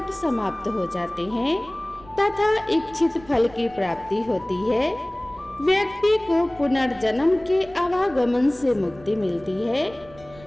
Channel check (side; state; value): right; noise; rumble, 22 dB below the sound